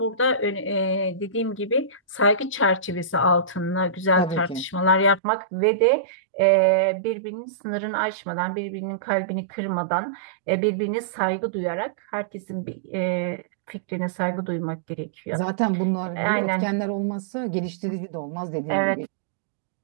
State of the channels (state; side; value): drops out; left; at 5.2 s